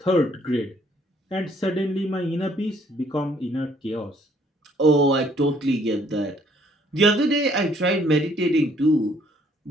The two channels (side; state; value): both; normal; correlation 0.63